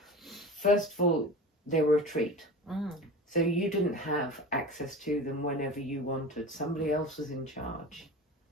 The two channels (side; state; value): both; normal; correlation 0.33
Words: first of all, they were a treat. So you didn't have access to them whenever you wanted. Somebody else was in charge,